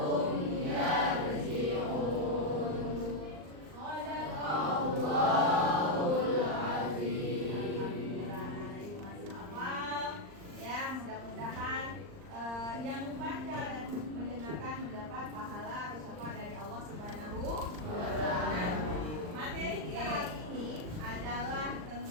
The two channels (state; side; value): late; left; 39 ms